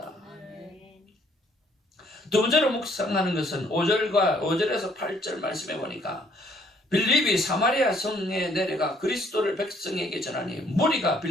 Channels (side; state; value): both; normal; correlation 0.64